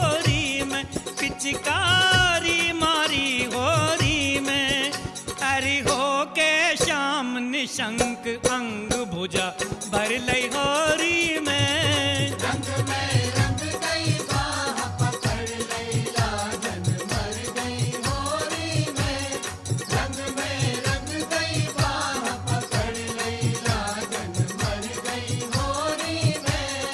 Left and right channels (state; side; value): identical; both; correlation 1.00